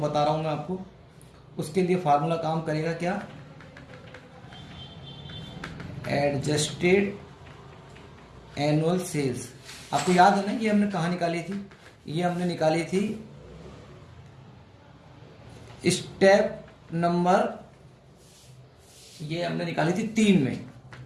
रहा हूँ मैं आपको। उसके लिए फार्मूला काम करेगा क्या? Adjusted annual sales. आपको याद है ना ये हमने कहाँ निकाली थी? ये हमने निकाली थी स्टेप नंबर, ये हमने निकाली थी 3 में।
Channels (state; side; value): identical; both; correlation 1.00